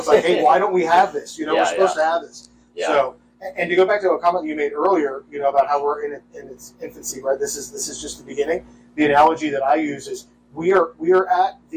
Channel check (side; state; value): both; identical; correlation 1.00